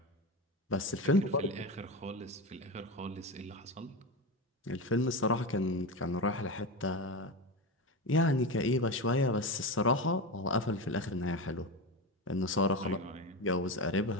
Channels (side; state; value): both; normal; correlation 0.20